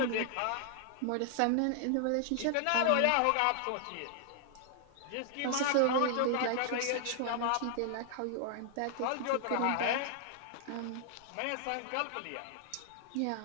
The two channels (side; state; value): both; different; correlation 0.00